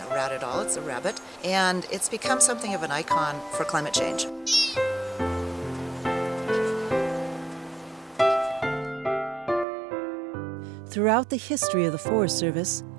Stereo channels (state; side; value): drops out; left; at 9.7 s